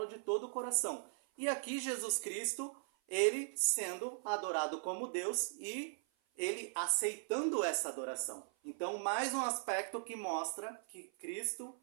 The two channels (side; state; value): left; silent; 52 dB below the other